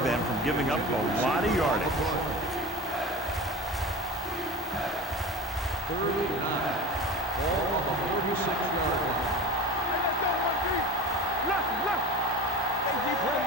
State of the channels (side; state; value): both; normal; correlation 0.33